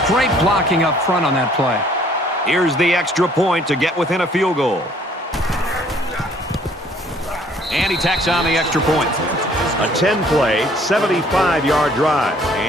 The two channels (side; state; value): both; normal; correlation 0.59